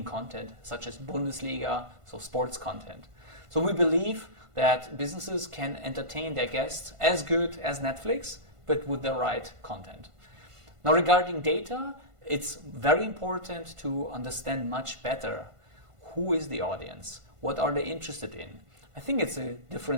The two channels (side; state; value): left; late; 1.5 ms